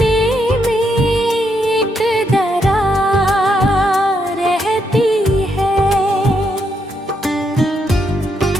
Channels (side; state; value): both; normal; correlation 0.78